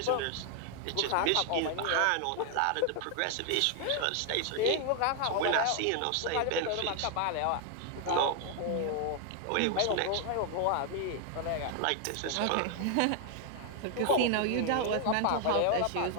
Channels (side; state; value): both; different; correlation 0.00